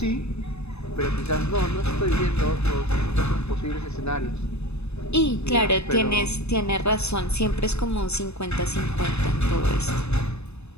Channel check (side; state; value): right; late; 0.80 ms